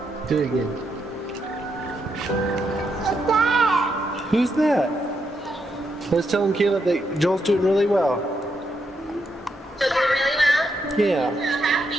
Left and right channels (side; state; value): both; normal; correlation 0.80